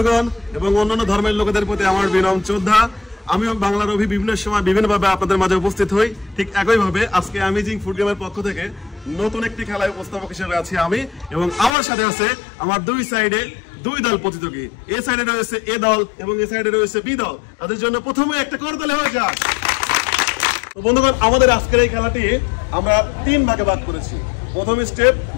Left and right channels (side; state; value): right; drops out; at 11.7 s